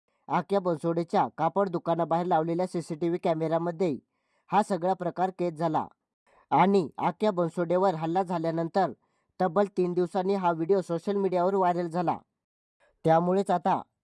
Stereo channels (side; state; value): both; identical; correlation 1.00